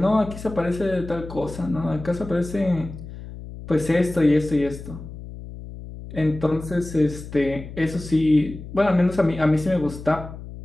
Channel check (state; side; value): noise; left; hum, 12 dB below the sound